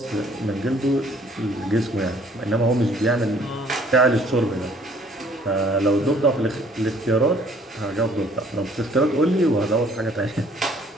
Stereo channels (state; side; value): normal; both; correlation 0.59